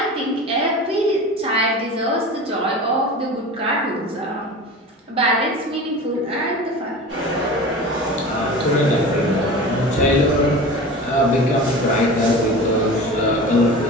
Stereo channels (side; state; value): both; normal; correlation 0.34